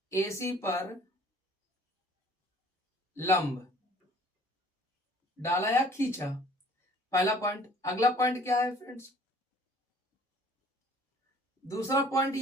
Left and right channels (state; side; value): normal; both; correlation 0.54